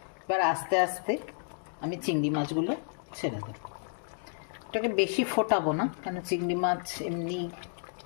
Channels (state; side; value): silent; right; digital silence